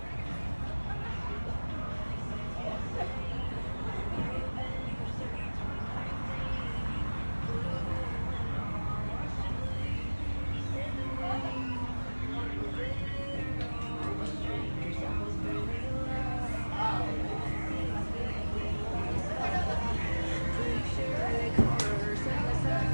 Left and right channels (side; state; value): both; inverted; correlation -1.00